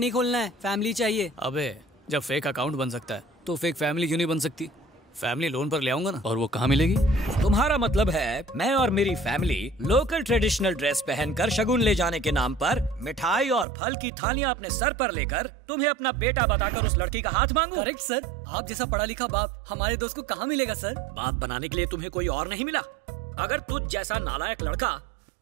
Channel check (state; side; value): drops out; left; at 13.7 s